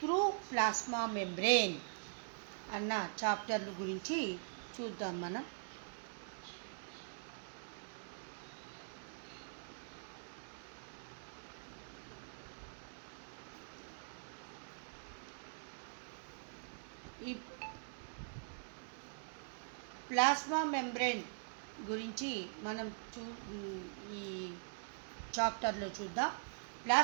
through plasma membrane అన్న చాప్టర్ల గురించి చూద్దాం మనం. ఈ plasma membrane గురించి మనం ఈ చాప్టర్లో చూద్దాం.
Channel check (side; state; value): left; silent; digital silence